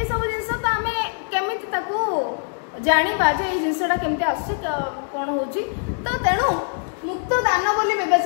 सब जिंस तो आम केमिति ताको जानिबा जे ए जिंसटा केमिति आसी कोन होची तो तेणु मुक्त दान बोली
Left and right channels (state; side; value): silent; right; 64 dB below the other